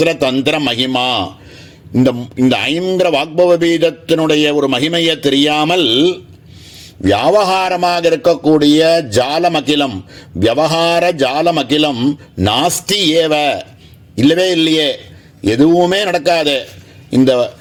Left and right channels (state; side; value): identical; both; correlation 1.00